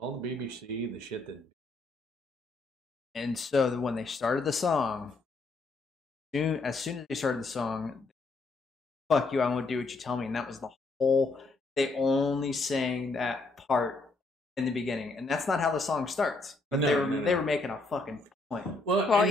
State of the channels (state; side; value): quieter; right; 3.3 dB